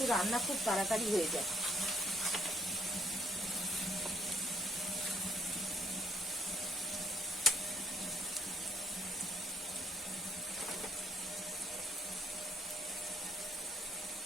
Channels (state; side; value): normal; both; correlation 0.67